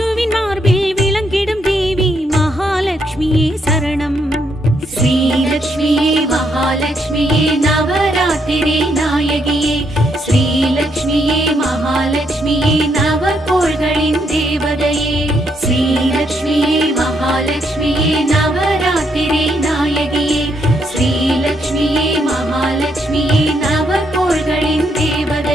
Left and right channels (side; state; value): both; normal; correlation 0.75